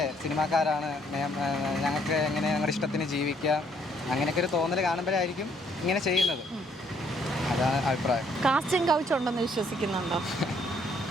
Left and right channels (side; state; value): both; normal; correlation 0.67